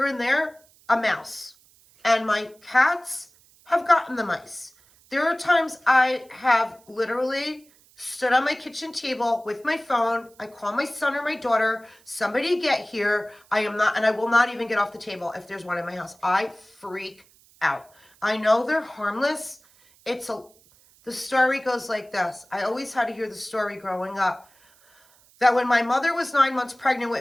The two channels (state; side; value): noise; right; hiss, 29 dB below the sound